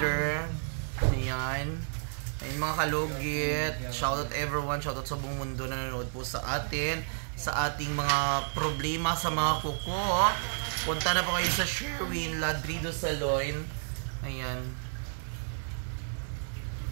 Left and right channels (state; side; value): silent; left; 57 dB below the other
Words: Ayan. Ayan mga kalugit, shoutout everyone, shoutout sa buong mundo na nanonood po sa atin, sa ating mga problema sa mga kuko. Punta na po kayo sa Sherwin Ladrido Salon. Ayan.